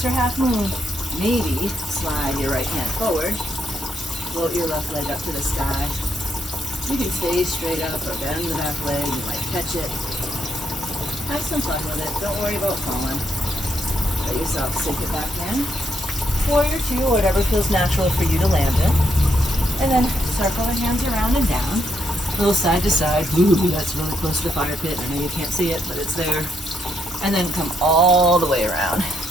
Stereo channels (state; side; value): normal; both; correlation 0.79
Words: her half moon, maybe slide your right hand forward, float your left leg up to the sky. You can stay straight up or bend the back leg. You might catch it. Have some fun with it. Don't worry about falling. Let yourself sink it back in. Warrior Two, whatever feels natural for you to land in. And then circle the hands around and down. A little side to side. Ooh, that's really close to the fire pit. I know you can't see it, but it's there. And then come all the way around